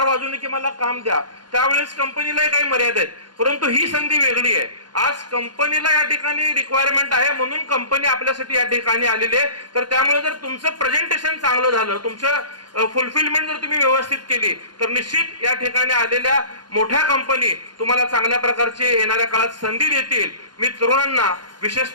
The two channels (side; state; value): left; late; 0.71 ms